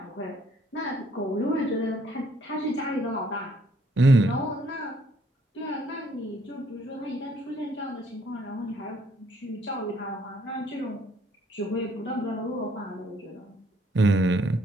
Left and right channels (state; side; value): normal; both; correlation 0.65